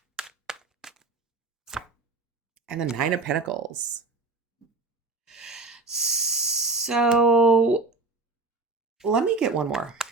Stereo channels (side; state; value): left; quieter; 3.6 dB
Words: And the Nine of Pentacles. So let me get one more.